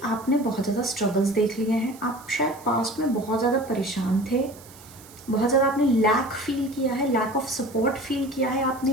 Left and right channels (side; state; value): right; noise; hiss, 21 dB below the sound